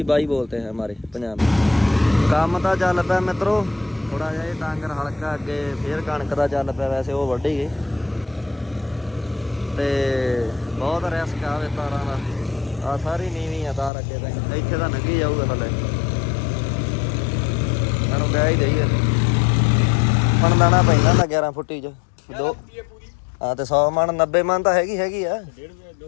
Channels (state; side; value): drops out; right; at 13.9 s